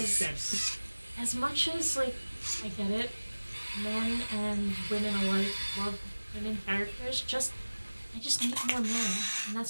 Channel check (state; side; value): inverted; both; correlation -1.00